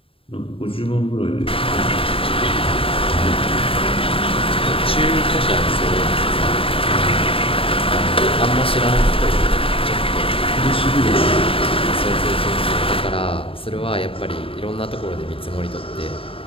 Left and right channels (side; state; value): right; late; 0.27 ms